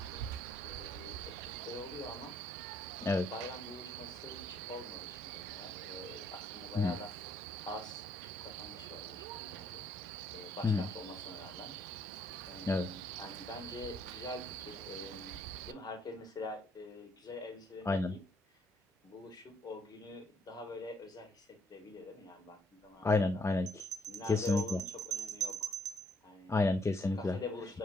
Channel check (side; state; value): both; normal; correlation 0.68